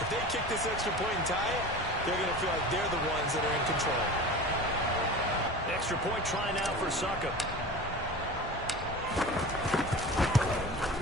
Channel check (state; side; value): normal; both; correlation 0.34